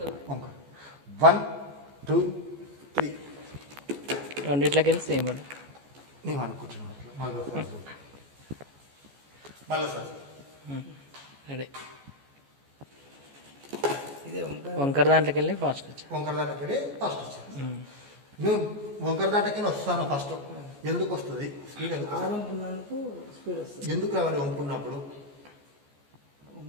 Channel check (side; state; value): left; late; 14 ms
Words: వంకడు. 1 2 3 రెండిట్లకి వెళ్ళి సేమ్ పడు. నీవు అనుకుంటున్నావు. మళ్ళీ సార్ రెడీ. వంకర దాంట్లోకి వెళ్ళి ఫాస్ట్ వచ్చా. వంకర దాంట్లోకి వెళ్ళి ఫస్ట్ వచ్చా. నువ్వు వంకర దాంట్లోకి వస్తాను ఫస్ట్. ఎందుకు వస్తుంది స్పీడ్? ఎందుకు రావాలి వంపున్నప్పుడు?